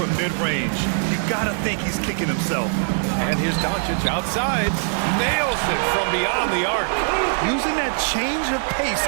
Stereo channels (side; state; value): left; silent; digital silence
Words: mid-range. You gotta think he's kicking himself. And here's Doncic outside. Nails it from beyond the arc. Using that change of pace